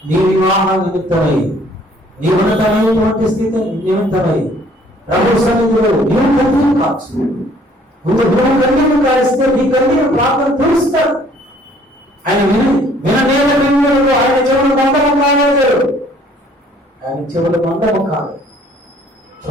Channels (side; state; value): both; normal; correlation 0.59